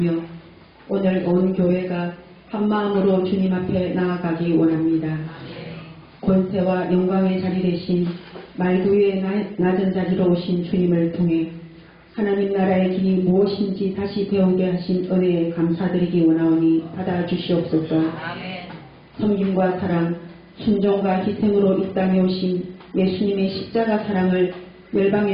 오늘 온 교회가 한마음으로 주님 앞에 나아가기 원합니다. 권세와 영광의 자리 대신 말구 위에 낮은 자리로 오신 주님을 통해 하나님 나라의 길이 무엇인지 다시 배우게 하신 은혜에 감사드리기 원하오니 받아주시옵소서. 섬김과 사랑, 순종과 희생으로 이 땅에 오신 예수님의 십자가 사랑을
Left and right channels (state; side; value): identical; both; correlation 1.00